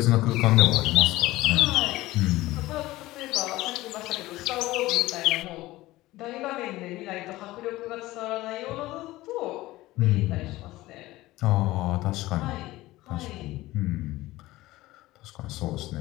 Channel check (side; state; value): right; quieter; 17.8 dB